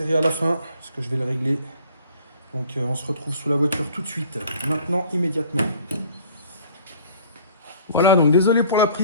à la fin, parce que je vais le régler. Donc on se retrouve sous la voiture tout de suite. Maintenant, immédiatement. Voilà, donc désolé pour la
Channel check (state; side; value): inverted; both; correlation -0.52